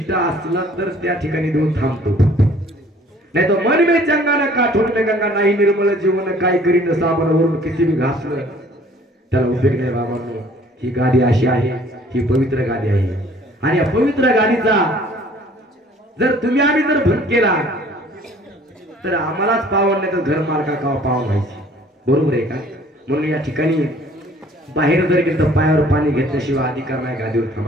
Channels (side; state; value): both; normal; correlation 0.55